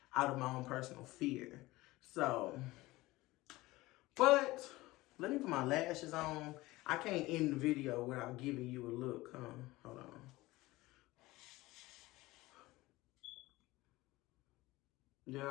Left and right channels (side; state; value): right; quieter; 19.3 dB